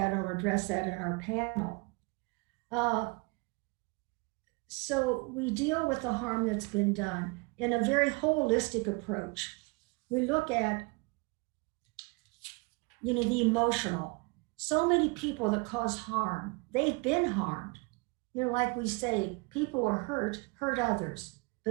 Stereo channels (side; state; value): left; quieter; 29.4 dB